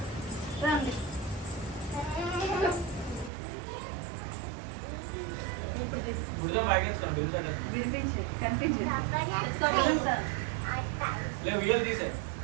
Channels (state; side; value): drops out; left; at 3.3 s